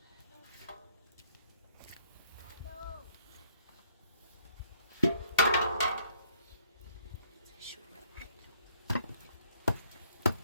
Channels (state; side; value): inverted; both; correlation -0.63